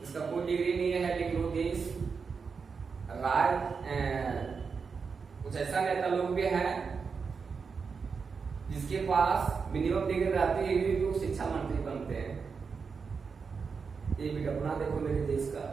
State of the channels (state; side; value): quieter; left; 5.4 dB